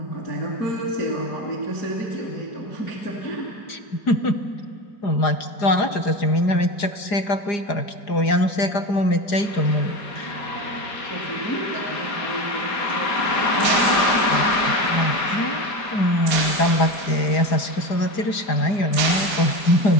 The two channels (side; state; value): right; late; 4.9 ms